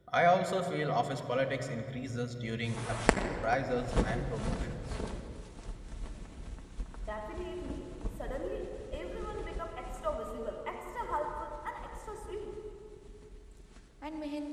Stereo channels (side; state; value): both; identical; correlation 1.00